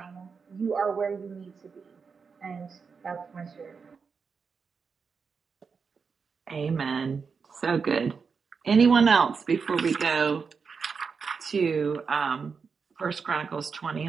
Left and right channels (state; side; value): quieter; left; 5.5 dB